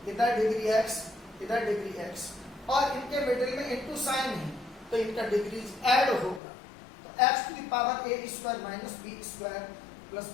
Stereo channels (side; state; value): right; drops out; at 6.4 s